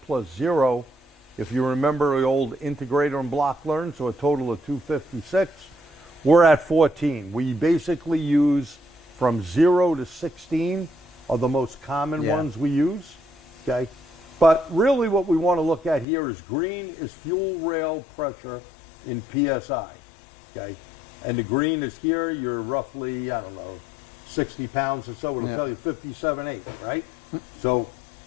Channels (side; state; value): right; drops out; at 16.1 s